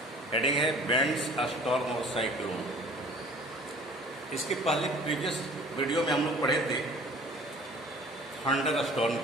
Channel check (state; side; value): normal; both; correlation 0.49